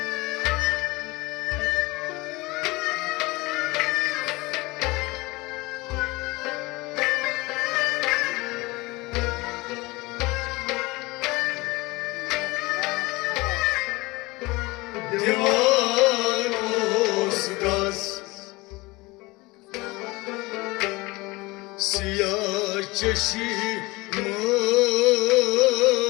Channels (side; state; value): right; quieter; 22.7 dB